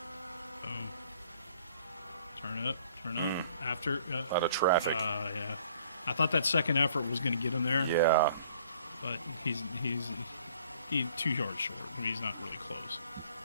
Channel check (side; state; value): both; inverted; correlation -0.57